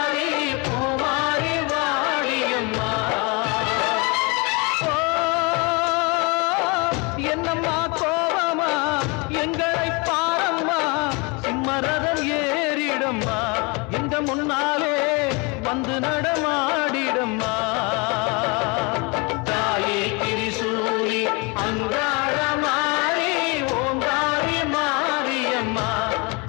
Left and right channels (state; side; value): quieter; right; 29.2 dB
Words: பூமாரி வாடியம்மா என்னம்மா கோபமா எங்களை பாரம்மா சிம்மரதம் ஏறிடம்மா எங்க முன்னாலே வந்து நடமாடிடம்மா தாயே திரிசூலி அங்காள மாறி ஓங்காரி மாரியம்மா